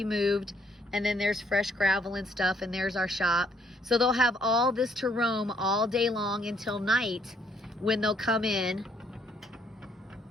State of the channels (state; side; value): normal; both; correlation 0.67